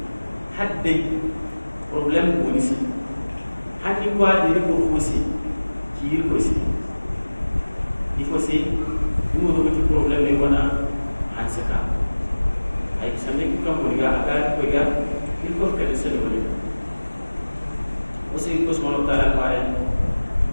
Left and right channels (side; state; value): both; inverted; correlation -1.00